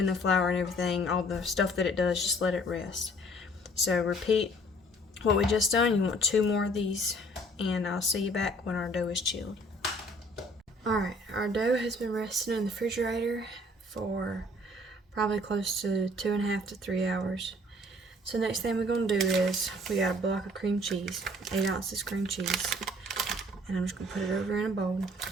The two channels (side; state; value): both; normal; correlation 0.56